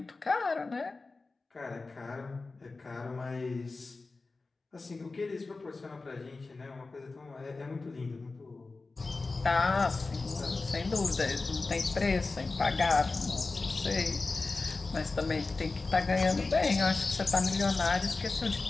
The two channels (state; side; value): quieter; right; 3.7 dB